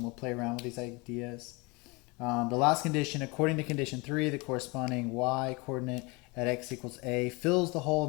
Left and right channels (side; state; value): right; quieter; 26.9 dB